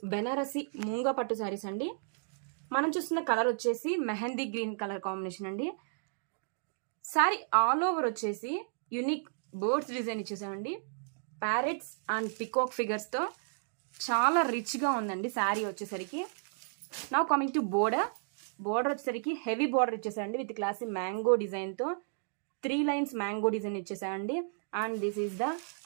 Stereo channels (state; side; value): silent; left; digital silence